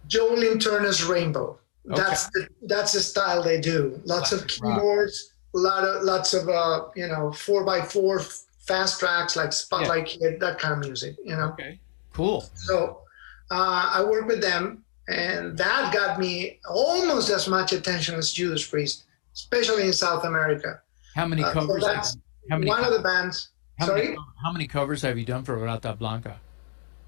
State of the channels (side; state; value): right; silent; digital silence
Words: Jolene Turner's Rainbow. Okay. That's the style they do. Lots of Classic rock. keyboards, lots of 4x4 fast tracks like Spotlight Kid, that kind of music. Okay. Cool. So I worked with them, and that got me almost as much attention as Judas Priest, especially in South America. How many So covers? that's How many? one of the bands. How Sorry, many, how many covers have you done for Rata Blanca?